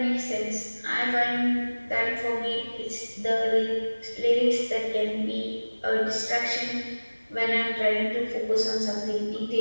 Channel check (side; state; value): both; inverted; correlation -1.00